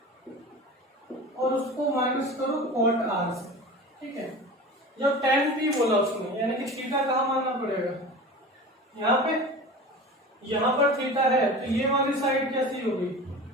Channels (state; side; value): normal; both; correlation 0.34